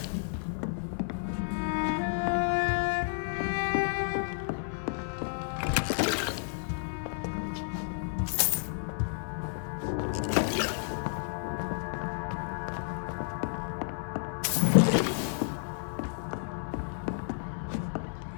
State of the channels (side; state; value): right; silent; digital silence